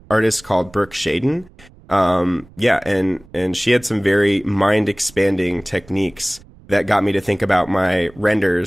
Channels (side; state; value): right; noise; rumble, 25 dB below the sound